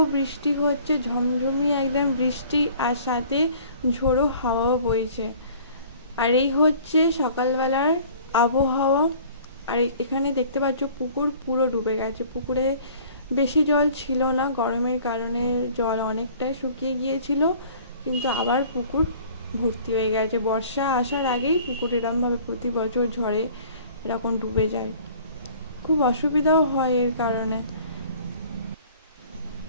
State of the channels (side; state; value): both; inverted; correlation -0.51